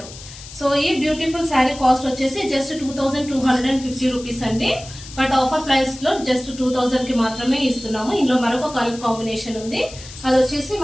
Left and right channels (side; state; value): left; noise; hiss, 16 dB below the sound